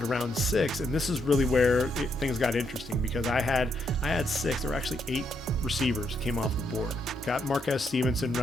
round 6, and this is really where things got interesting, because I had 6. There were actually 8 receivers came off the board. Got Marquez Stevenson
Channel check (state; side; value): normal; both; correlation 0.77